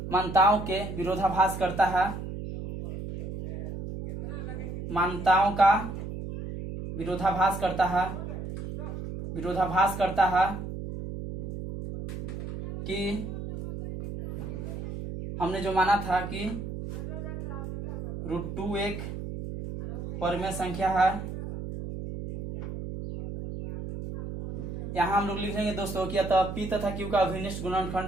के विरोधाभास करता है, मान्यताओं का विरोधाभास करता है कि हमने जो माना था कि √2 एक परमेय संख्या है। यहाँ हम लोग लिखेंगे दोस्तों कि अतः p तथा q का अभिनिष्ठ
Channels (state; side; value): noise; right; hum, 7 dB below the sound